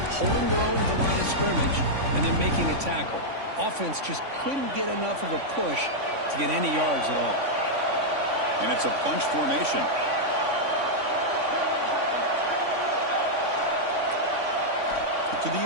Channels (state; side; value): late; left; 3.5 ms